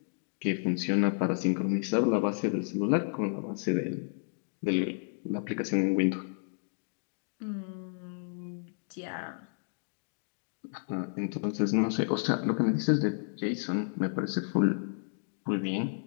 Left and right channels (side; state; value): right; silent; digital silence